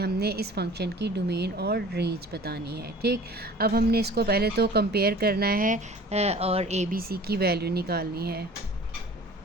इस फंक्शन की डोमेन और रेंज बतानी है। ठीक, अब हमने इसको पहले तो कंपेयर करना है और ए बी सी की वैल्यू निकालनी है।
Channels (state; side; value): normal; both; correlation 0.45